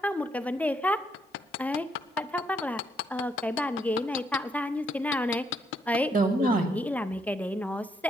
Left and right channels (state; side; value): normal; both; correlation 0.74